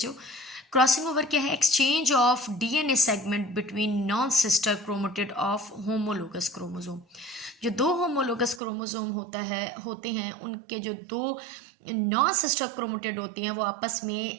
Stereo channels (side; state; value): left; drops out; at 8.6 s